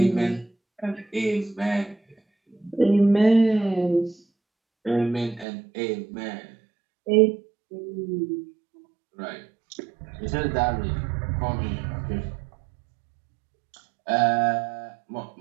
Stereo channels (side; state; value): left; drops out; at 5.5 s